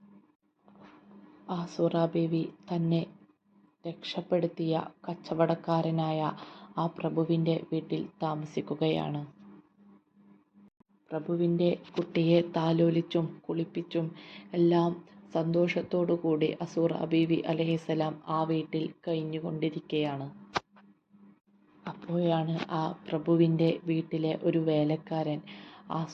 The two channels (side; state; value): both; identical; correlation 1.00